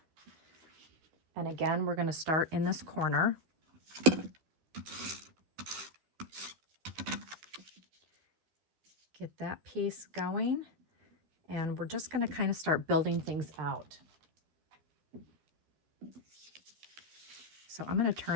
And again, we're going to start in this corner. Get that piece going. And we're just going to kind of start building things out. So I'm going to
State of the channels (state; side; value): late; left; 13 ms